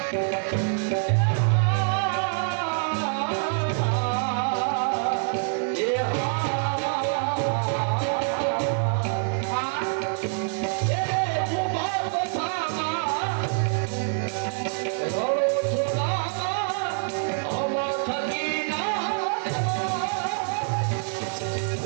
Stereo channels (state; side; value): silent; left; 61 dB below the other